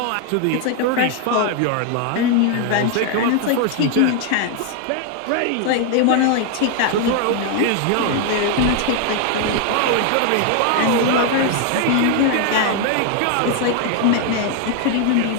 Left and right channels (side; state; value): both; different; correlation 0.00